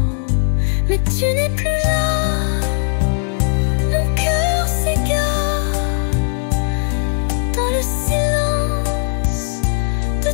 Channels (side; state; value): right; silent; digital silence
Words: Mais tu n'es plus là, mon cœur s'égare dans le silence de